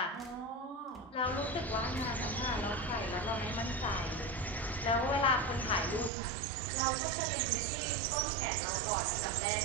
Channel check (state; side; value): drops out; left; at 6.1 s